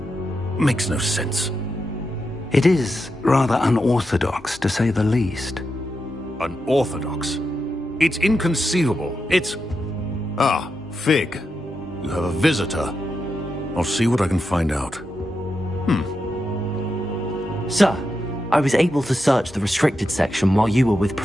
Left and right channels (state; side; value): normal; both; correlation 0.86